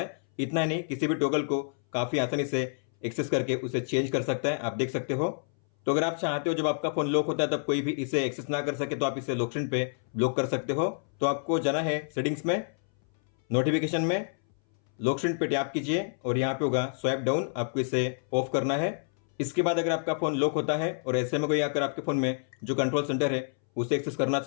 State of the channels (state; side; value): silent; right; 59 dB below the other